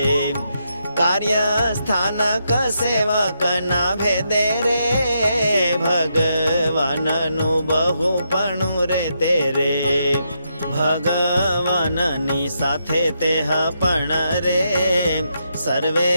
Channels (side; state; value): both; inverted; correlation -0.81